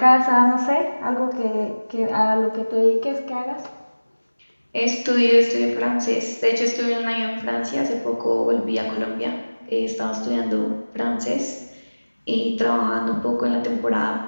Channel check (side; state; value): both; inverted; correlation -1.00